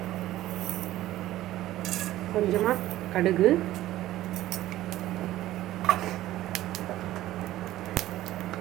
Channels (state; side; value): quieter; left; 14.8 dB